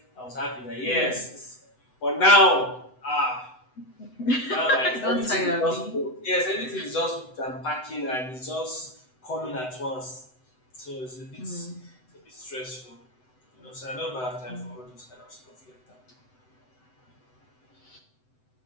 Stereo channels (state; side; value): late; right; 7.9 ms